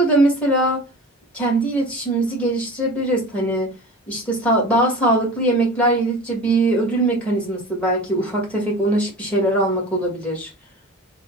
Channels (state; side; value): normal; both; correlation 0.36